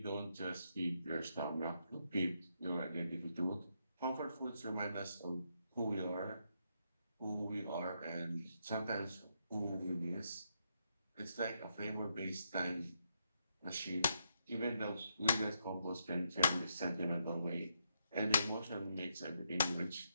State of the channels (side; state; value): both; inverted; correlation -0.79